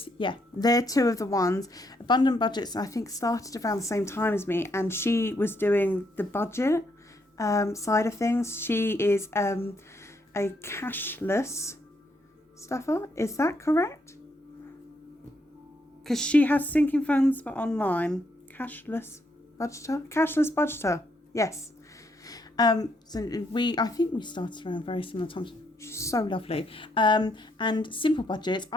yeah, they're two of the ones. Abundant Budgets, I think, started around the same time as me, and she was doing the budget side of things. She is a cashless stuffer. Is that correct? Because she has sinking funds, but online. Cashless budgeter? Yes. So I think we started around very similar times. She's so lovely. And Simple Budgets,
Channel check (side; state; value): both; normal; correlation 0.75